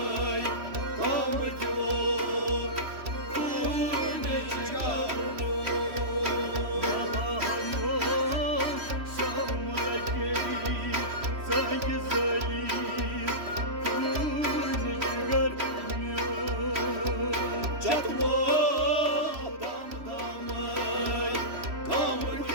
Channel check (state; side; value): late; left; 3.1 ms